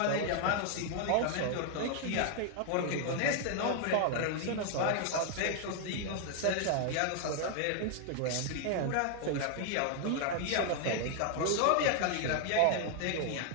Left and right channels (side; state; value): both; different; correlation 0.00